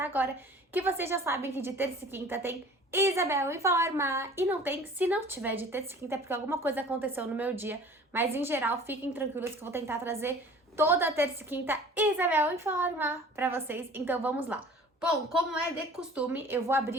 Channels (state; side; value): normal; both; correlation 0.46